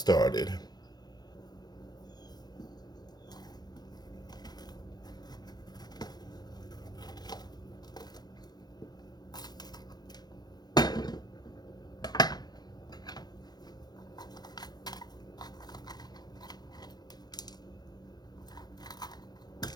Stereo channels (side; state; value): right; late; 0.19 ms